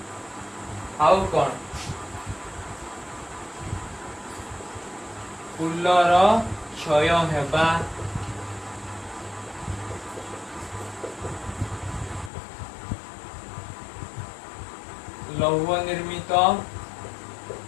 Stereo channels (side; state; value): right; drops out; at 12.3 s